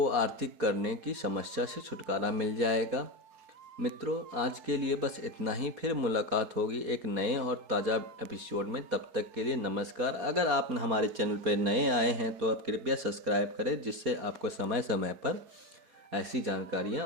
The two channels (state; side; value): late; left; 4.6 ms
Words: आर्थिक करने की समस्या से छुटकारा मिल जाएगा। मित्रों, आज के लिए बस इतना ही। फिर मुलाकात होगी एक नए और ताज़ा एपिसोड में। तब तक के लिए नमस्कार। अगर आप हमारे चैनल पर नए आए हैं तो आप कृपया सब्सक्राइब करें, जिससे आपको समय समय पर ऐसी